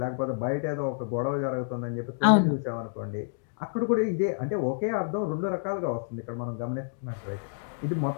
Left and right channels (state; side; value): silent; right; digital silence